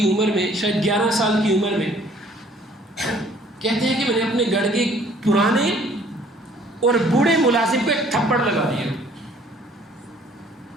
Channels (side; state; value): both; normal; correlation 0.57